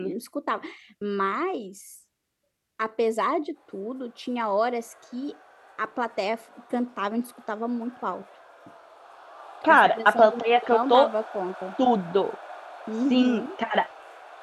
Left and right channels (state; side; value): identical; both; correlation 1.00